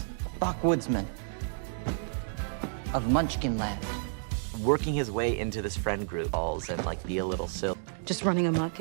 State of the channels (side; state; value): left; silent; digital silence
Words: Backwoodsman of Munchkin Land. working his way into this friend group and like be a little silly. Just running amok